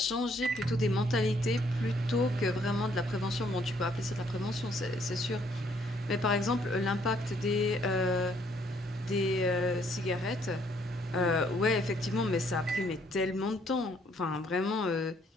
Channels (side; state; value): both; normal; correlation 0.66